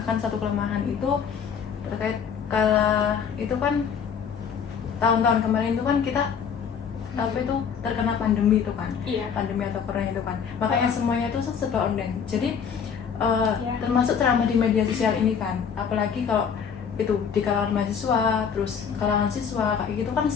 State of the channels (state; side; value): quieter; right; 7.0 dB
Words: satu kelemahan itu terkait itu kan tahun-tahun kemarin itu kan kita apa itu terkena pandemi itu kan, Iya. pandemi atau corona itu kan, makanya semuanya itu serba online. Jadi Ya. termasuk ceramah di media sosial ini kan, apalagi kalau itu di kalangan mahasiswa, terus kalangan siswa kayak gitu kan,